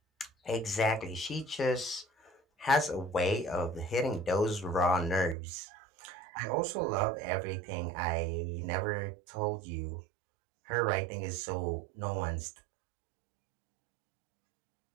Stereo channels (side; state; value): left; drops out; at 5.4 s